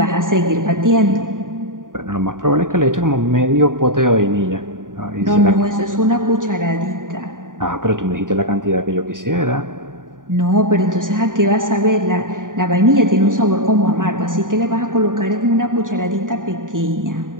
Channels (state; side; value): late; left; 0.89 ms